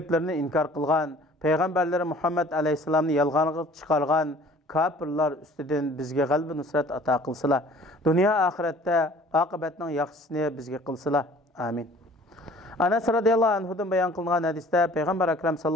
inkor qilgan, payg'ambarlari Muhammad alayhisalomni yolg'onga chiqargan kafirlar ustidan bizga g'alaba nusrat ato qilsalar, dunyo oxiratda oqibatning yaxshisini bizga qilsalar. Amin. Anas radhiyallohu anhudan bayon qilingan hadisda Payg'ambar akram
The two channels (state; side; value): normal; both; correlation 0.51